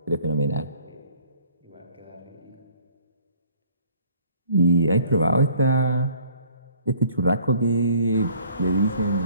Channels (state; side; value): inverted; both; correlation -0.56